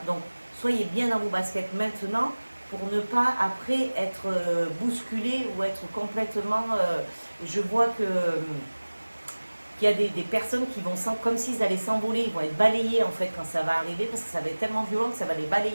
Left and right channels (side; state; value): both; inverted; correlation -1.00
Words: Donc, soyez bien dans vos baskets maintenant pour ne pas après être bousculé ou être complètement... je vois que qu'il y a des personnes qui vont comme s'ils allaient s'envoler, ils vont être balayés en fait quand ça va arriver, parce que ça va être tellement violent que ça va les